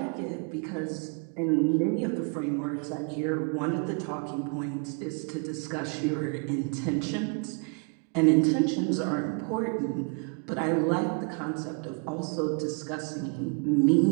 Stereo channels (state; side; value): quieter; left; 37.3 dB